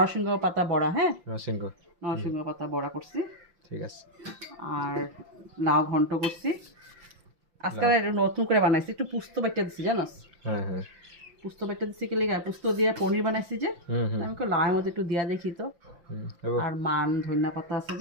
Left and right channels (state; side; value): late; left; 5.8 ms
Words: পাতা বড়া, হ্যাঁ নরসিংহ। হুম নরসিংহ পাতা বড়া করছি। ঠিক আছে। আর লাউ ঘন্ট করছি। আজকাল লাও। এটা নতুন করে বানাইছি, একটু পুস্ত বাটা দিছি জানোস। হ্যাঁ হ্যাঁ। পুস্ত বাটা দিছি কি লেগে, পুস্ত দিয়ে পনির বানাইছি যে। হুম হুম আমি লাউয়ের মধ্যে একটু দিয়া দেখি তো। হুম হবো। আর মান ধনিয়া পাতা আছে